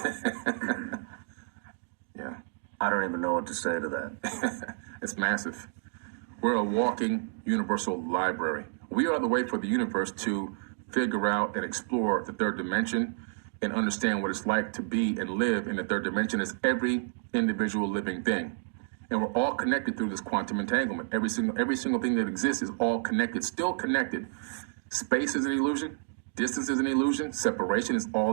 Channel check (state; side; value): silent; left; digital silence